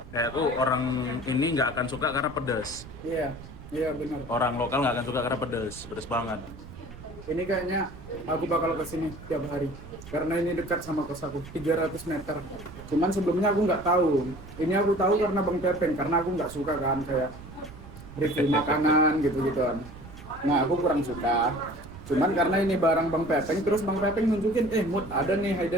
Kayak tuh orang ini nggak akan suka karena pedas. Iya benar. Orang lokal nggak akan suka karena pedas banget. Ini kayaknya aku bakal kesini tiap hari karena ini dekat sama kos aku, 300 meter. Cuman sebelumnya aku nggak tahu. Ini aku tahu karena Bang Pepeng, karena aku nggak suka kan kayak review makanan gitu-gituan. Nah aku kurang suka. Cuman karena ini barang Bang Pepeng, terus Bang Pepeng nunjukin, Mut ada nih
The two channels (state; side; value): noise; right; rumble, 15 dB below the sound